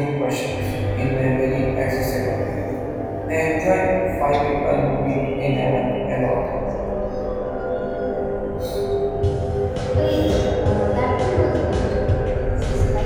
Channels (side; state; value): both; identical; correlation 1.00